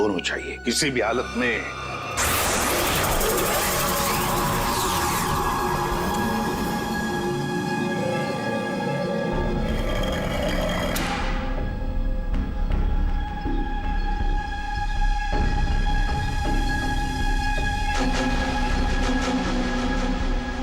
चाहिए, किसी भी हालत में।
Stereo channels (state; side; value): identical; both; correlation 1.00